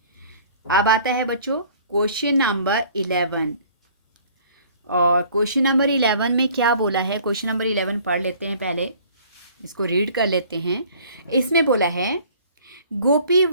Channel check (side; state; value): both; inverted; correlation -0.53